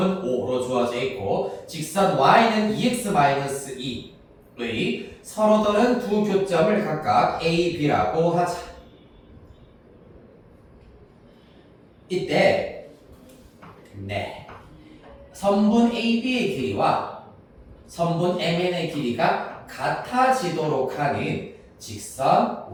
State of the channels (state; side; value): identical; both; correlation 1.00